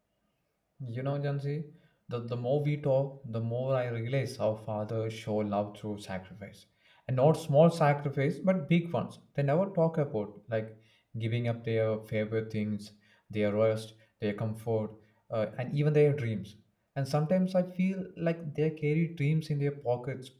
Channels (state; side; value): identical; both; correlation 1.00